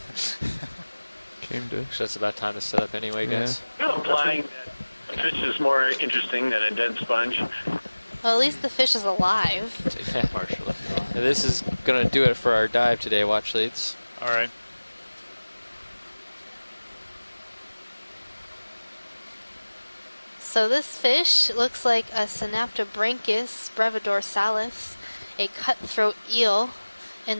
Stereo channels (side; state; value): both; inverted; correlation -1.00